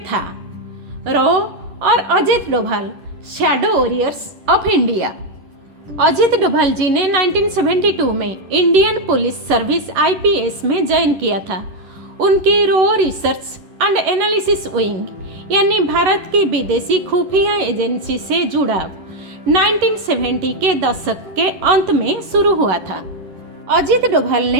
था। रॉ और Ajit Doval, shadow warriors of India. Ajit Doval ji ने 1972 में इंडियन पुलिस सर्विस IPS में ज्वाइन किया था। उनकी रॉ रिसर्च एंड एनालिसिस विंग यानी भारत की विदेशी खुफिया एजेंसी से जुड़ाव 1970 के दशक के अंत में शुरू हुआ था। अजित डोभाल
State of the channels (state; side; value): late; left; 11 ms